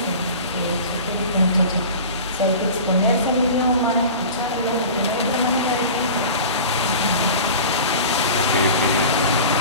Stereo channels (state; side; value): inverted; both; correlation -0.36